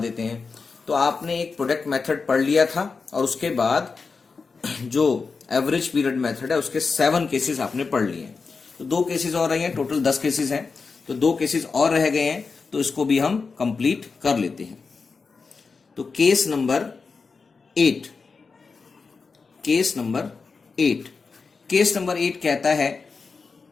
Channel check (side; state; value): right; quieter; 4.7 dB